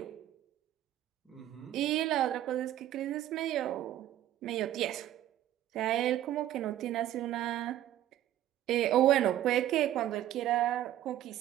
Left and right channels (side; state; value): left; quieter; 12.8 dB